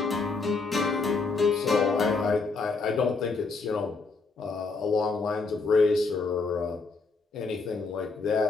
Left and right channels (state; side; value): quieter; right; 4.2 dB